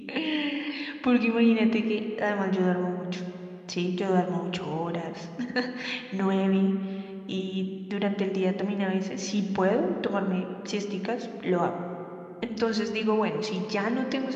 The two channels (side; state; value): both; identical; correlation 1.00